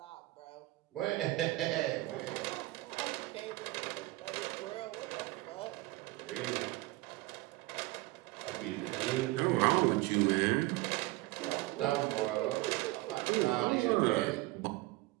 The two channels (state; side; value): quieter; left; 20.1 dB